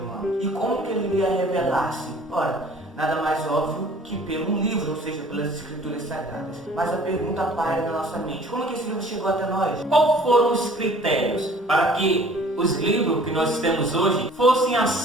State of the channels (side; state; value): both; normal; correlation 0.52